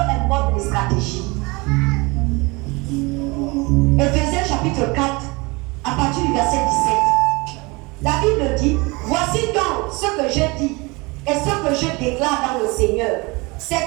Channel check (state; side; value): quieter; left; 25.7 dB